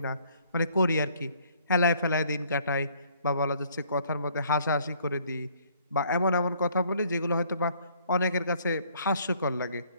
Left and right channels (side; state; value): both; inverted; correlation -0.62